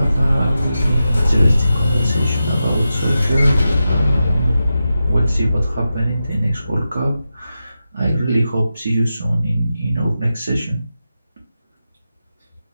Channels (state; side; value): inverted; both; correlation -0.90